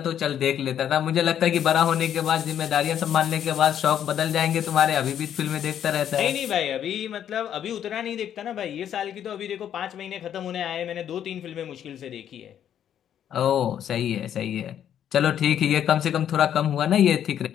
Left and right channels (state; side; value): quieter; right; 9.8 dB